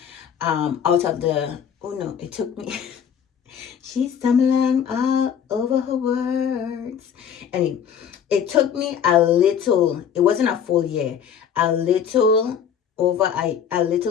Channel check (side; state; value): right; quieter; 8.1 dB